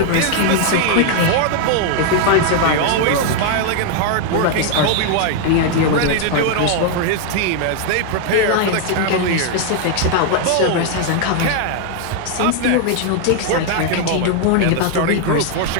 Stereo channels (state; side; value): different; both; correlation 0.00